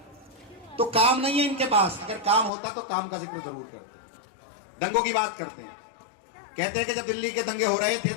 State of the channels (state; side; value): drops out; right; at 2.5 s